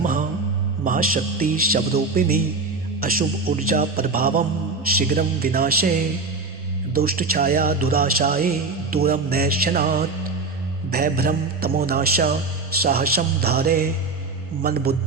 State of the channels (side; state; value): left; quieter; 3.9 dB